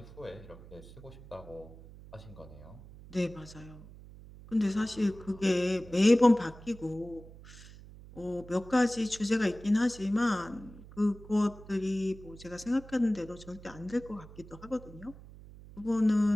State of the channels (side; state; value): right; noise; hum, 18 dB below the sound